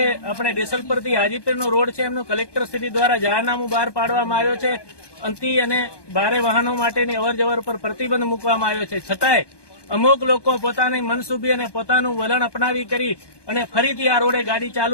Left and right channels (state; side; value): late; right; 1.2 ms